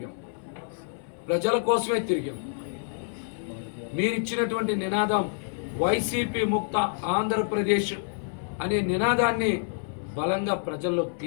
ప్రజల కోసమే తిరిగాం. మీరిచ్చినటువంటి నినాదం వైసీపీ ముక్త ఆంధ్రప్రదేశ్ అనే నినాదాన్ని బలంగా ప్రజల్లోకి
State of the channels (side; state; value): right; silent; 57 dB below the other